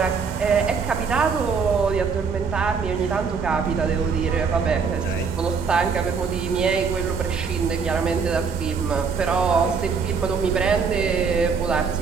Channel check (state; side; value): quieter; left; 5.6 dB